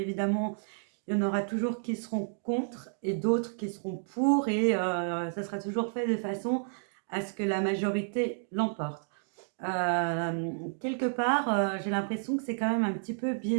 il y en aura toujours qui seront contre et d'autres qui seront pour et ça sera toujours fait de façon à ce que la majorité l'emporte. Quelque part, j'ai l'impression que c'est quand même un petit peu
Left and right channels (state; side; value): silent; left; digital silence